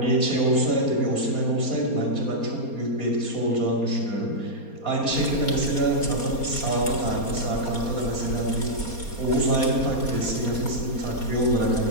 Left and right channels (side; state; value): right; late; 4.3 ms